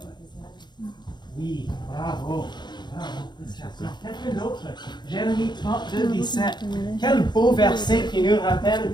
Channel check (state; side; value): late; right; 0.21 ms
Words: Oui, bravo. Bravo. Quelqu'un d'autre? Jérémie 32, 17. Quel beau verset qui nous